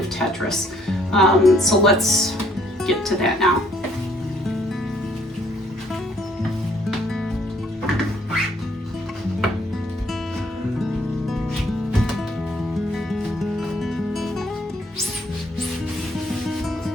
Tetris. So let's get to that now.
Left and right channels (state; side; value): normal; both; correlation 0.65